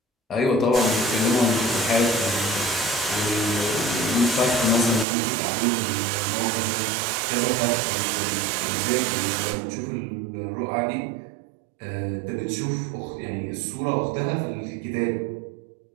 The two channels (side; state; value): left; drops out; at 5.1 s